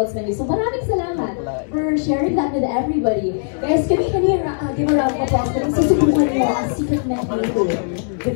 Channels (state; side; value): silent; right; digital silence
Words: menu. So maraming salamat for sharing that with everybody. Guys, can we give a round of applause kung susubukan niyo ang secret menu?